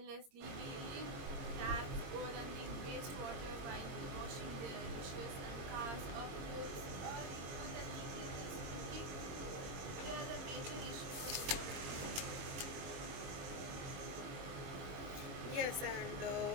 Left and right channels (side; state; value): left; late; 22 ms